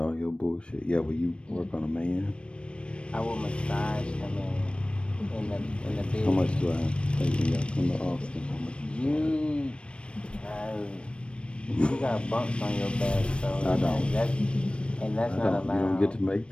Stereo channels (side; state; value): right; late; 0.058 ms